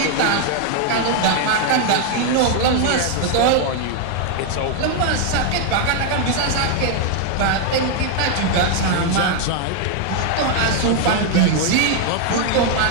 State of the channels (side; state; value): both; different; correlation 0.01